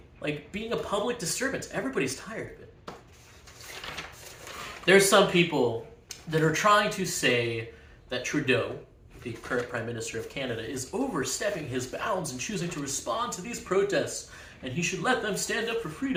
like being a public disturbance. Everybody's tired of it. There's some people that are trying to say that Trudeau, the current Prime Minister of Canada, is overstepping his bounds and choosing to respond to these protests, and he should let them stand up for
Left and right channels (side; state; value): both; identical; correlation 1.00